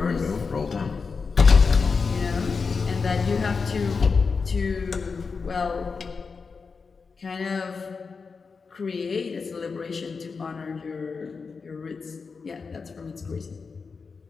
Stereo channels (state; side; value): quieter; right; 4.9 dB